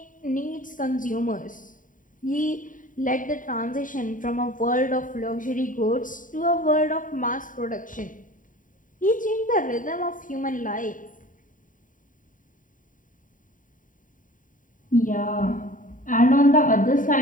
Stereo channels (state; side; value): late; right; 0.38 ms